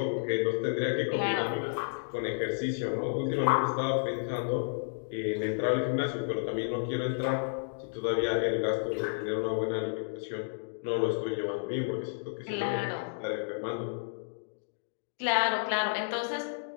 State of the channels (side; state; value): right; silent; digital silence